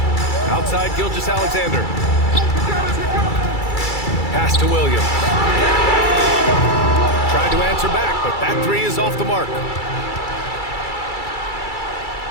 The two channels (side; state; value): right; late; 2.3 ms